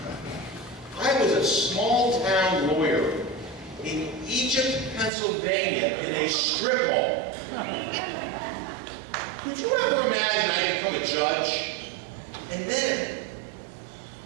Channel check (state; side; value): drops out; left; at 5.1 s